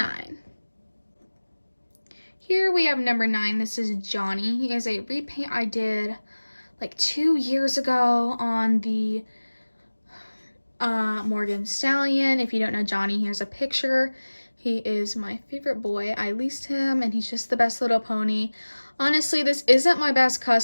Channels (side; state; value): both; inverted; correlation -1.00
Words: Here we have number 9. This is Johnny. He is a repaint I did like 2 years ago on the Morgan Stallion. If you don't know Johnny, here's a picture. He is my favorite boy. I leased him, and he's just the best little pony. Honestly, this isn't my best